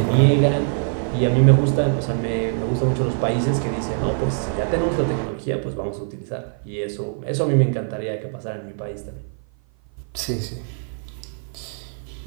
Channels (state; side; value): silent; left; 55 dB below the other